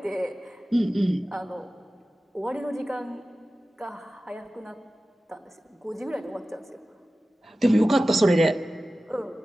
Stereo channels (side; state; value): both; normal; correlation 0.96